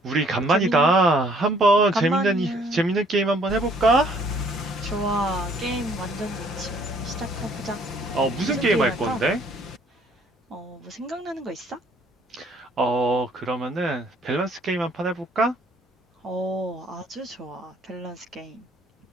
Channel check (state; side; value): normal; both; correlation 0.61